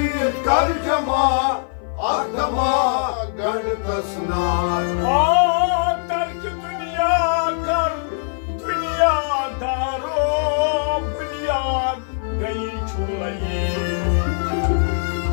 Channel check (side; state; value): right; silent; 56 dB below the other